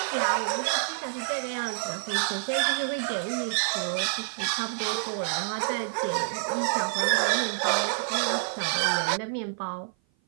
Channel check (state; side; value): silent; left; 55 dB below the other